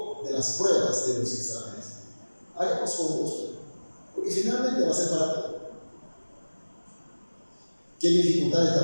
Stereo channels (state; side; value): inverted; both; correlation -1.00